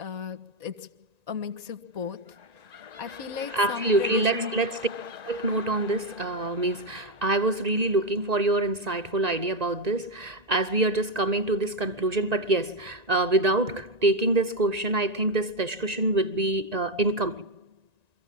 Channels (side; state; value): left; late; 1.9 ms